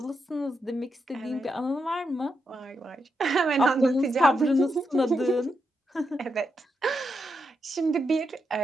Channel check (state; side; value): normal; both; correlation 0.84